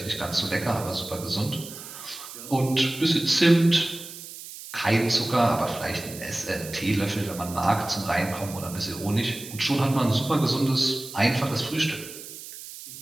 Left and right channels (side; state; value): right; noise; hiss, 13 dB below the sound